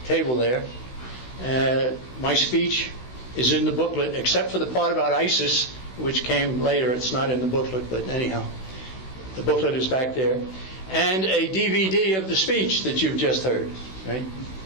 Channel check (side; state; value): right; late; 16 ms